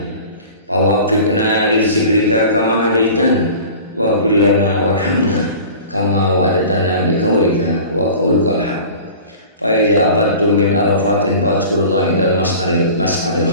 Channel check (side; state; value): both; inverted; correlation -0.41